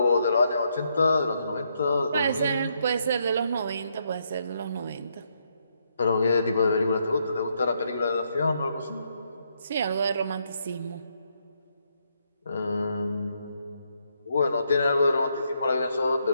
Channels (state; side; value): inverted; both; correlation -0.76